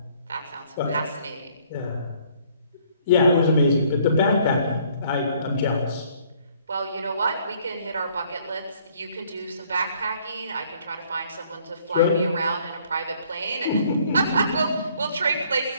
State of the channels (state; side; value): inverted; both; correlation -0.61